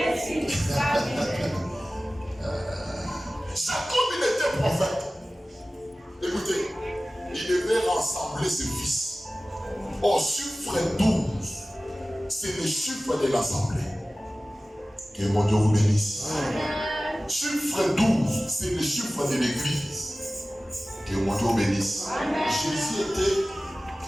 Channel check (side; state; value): both; normal; correlation 0.97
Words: Jacob, il était prophète. Écoutez, il devait rassembler ses fils. Au chiffre 12, c'est le chiffre de l'assemblée. Que mon Dieu vous bénisse. Chiffre 12, c'est le chiffre de l'église. Que mon Dieu vous bénisse. Jésus était,